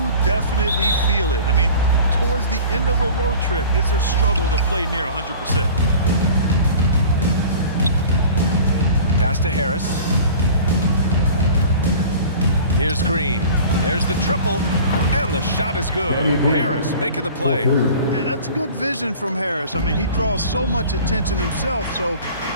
definitely feel it. I mean, towards the end of a road trip, it's a struggle to play near 100%. Pass to Harris. Here's Green. There's the triple, and the shot is good. Harris making the play. Yeah, that's good vision from Harris. I mean, he draws so much attention himself, so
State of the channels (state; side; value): inverted; both; correlation -0.42